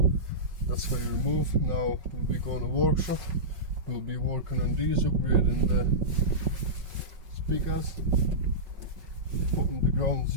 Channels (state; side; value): late; left; 5.3 ms